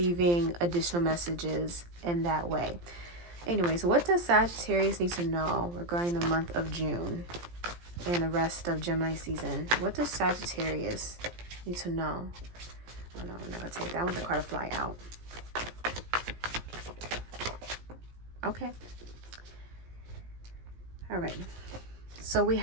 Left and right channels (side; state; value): left; late; 17 ms